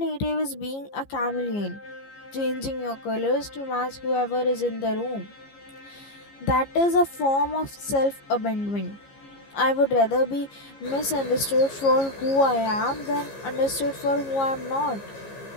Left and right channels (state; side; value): late; right; 15 ms